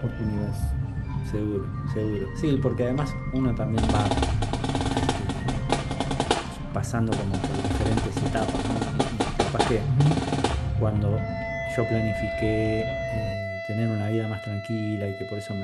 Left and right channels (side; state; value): both; identical; correlation 1.00